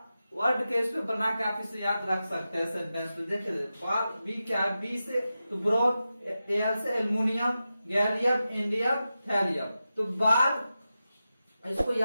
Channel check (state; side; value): inverted; both; correlation -0.92